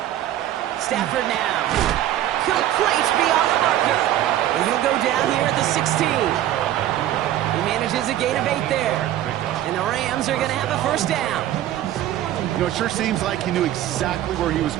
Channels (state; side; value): quieter; left; 12.8 dB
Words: Stafford now. Complete beyond the marker. And he'll go down here at the 16. He manages a gain of 8 there. And the Rams are going to have a 1st down. You know, it sure seems like he knew exactly where he was